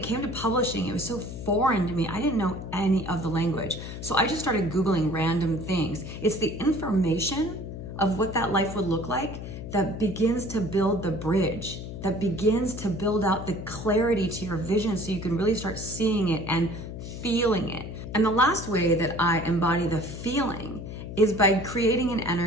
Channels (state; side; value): noise; left; hum, 9 dB below the sound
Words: came to publishing, it was so foreign to me. I didn't know any of the language. So I just started Googling random things. It's the information of what that life would look like that begins to build the bridge, that begins to build out the clarity to your vision so you can really start seeing it and feeling it. And the last way that I embody the feeling is by creating an